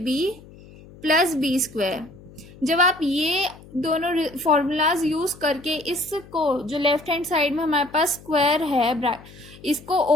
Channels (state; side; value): noise; left; hum, 21 dB below the sound